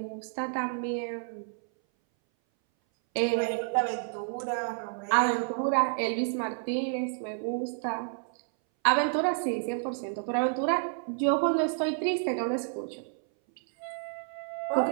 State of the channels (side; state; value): left; silent; 58 dB below the other